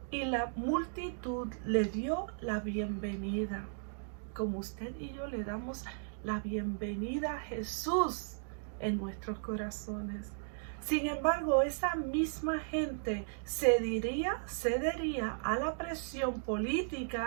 y la multitud le dio la bienvenida, como usted y yo le damos la bienvenida a Jesús en nuestros corazones. Sin embargo, esa misma gente cedería a la presión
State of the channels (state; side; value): silent; left; digital silence